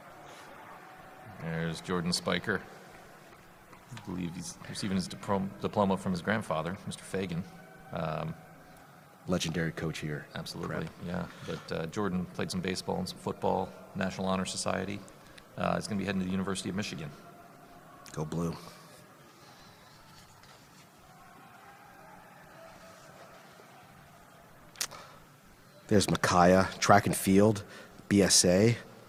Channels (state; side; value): identical; both; correlation 1.00